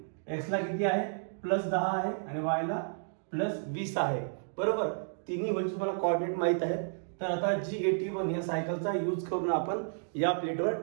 x ला किती आहे +10 आहे आणि y ला +20 आहे, बरोबर। तिन्ही होल तुम्हाला कोऑर्डिनेट माहित आहे। तर आता G81 या सायकलचा यूज करून आपण या प्लेटवर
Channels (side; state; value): left; silent; digital silence